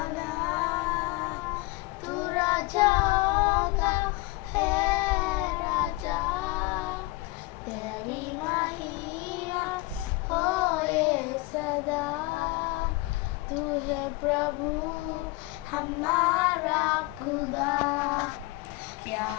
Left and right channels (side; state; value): right; quieter; 21.6 dB